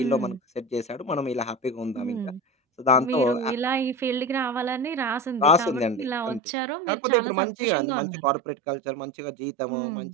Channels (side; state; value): left; drops out; at 6.4 s